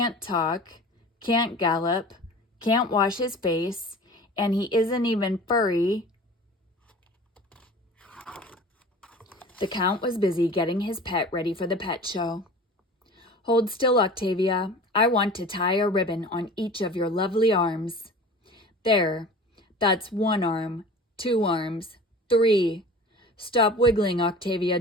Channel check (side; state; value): both; normal; correlation 0.40